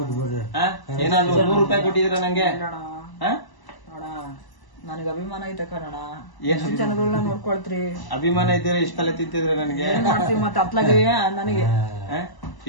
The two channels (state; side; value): late; right; 1.0 ms